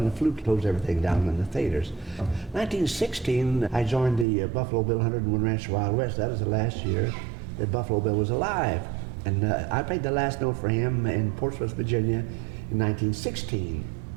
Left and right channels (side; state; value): left; drops out; at 4.2 s